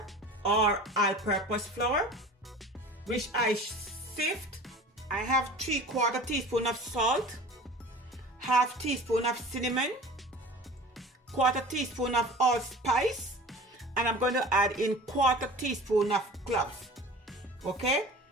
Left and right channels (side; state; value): both; normal; correlation 0.40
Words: or all-purpose flour, which I sift. I have 3/4 teaspoon of salt, half teaspoon of cinnamon, 1/4 teaspoon of allspice, and I'm going to add in 1/4 teaspoon of cloves. Okay,